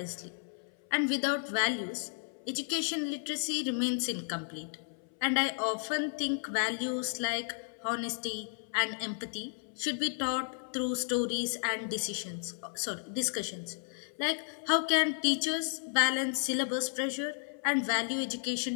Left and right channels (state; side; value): silent; right; 56 dB below the other